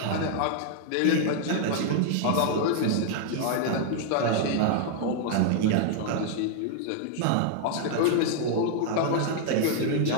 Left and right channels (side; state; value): both; different; correlation 0.00